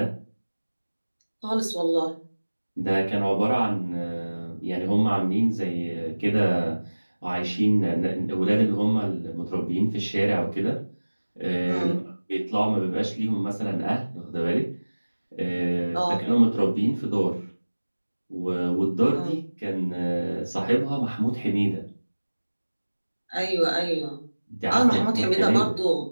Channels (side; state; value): both; inverted; correlation -1.00